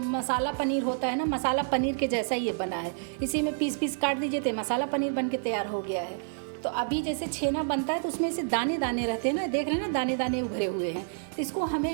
पनीर होता है ना, मसाला पनीर के जैसा ही ये बना है। इसी में पीस काट दीजिए तो मसाला पनीर बन के तैयार हो गया है। तो अभी जैसे छेना बनता है तो उसमें से दाने दाने रहते हैं ना, देख रहे हैं ना, दाने दाने उभरे हुए हैं। तो इसको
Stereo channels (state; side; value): silent; left; digital silence